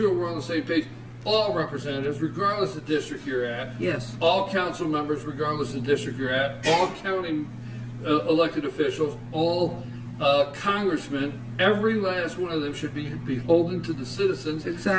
we're on the same page. all representatives, regardless of district you're at. Yes. All council members, regardless of district you're at. All county elected officials, all congressmen, every last one of them should be beholden to the citizens.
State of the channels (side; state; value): both; identical; correlation 1.00